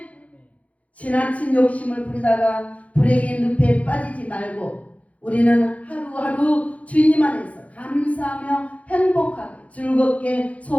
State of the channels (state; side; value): late; right; 0.066 ms